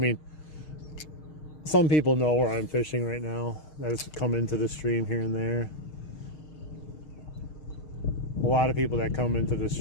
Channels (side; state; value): right; late; 6.5 ms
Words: some people know where I'm fishing right now. That's come into the stream here and there. A lot of people that come into the